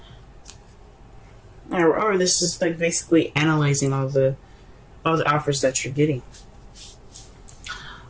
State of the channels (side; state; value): both; identical; correlation 1.00